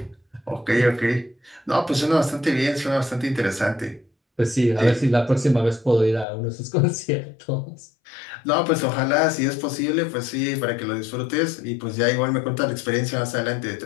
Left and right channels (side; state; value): right; drops out; at 6.2 s